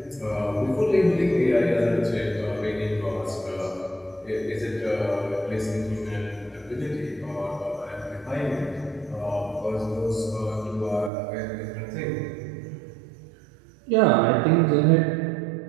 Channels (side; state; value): left; drops out; at 11.1 s